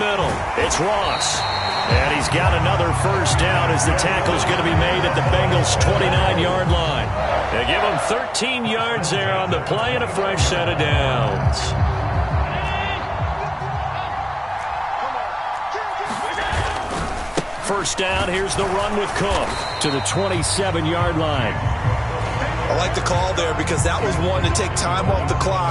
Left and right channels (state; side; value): identical; both; correlation 1.00